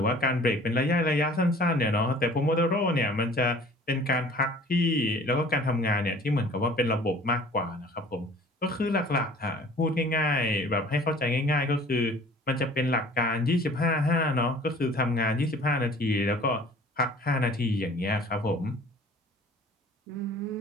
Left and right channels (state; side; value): normal; both; correlation 0.49